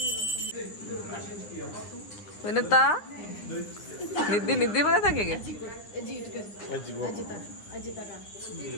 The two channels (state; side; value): late; right; 9.8 ms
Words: ವಿನಿತಾ ನಿದ್ದೆ ಬಂದ ತಂಗಿಗೆ.